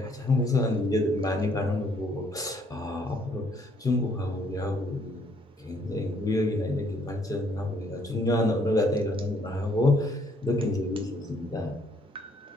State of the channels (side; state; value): both; normal; correlation 0.66